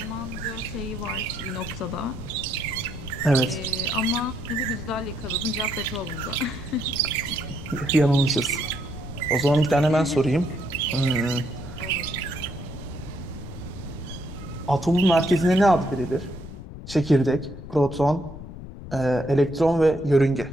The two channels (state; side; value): noise; left; rumble, 12 dB below the sound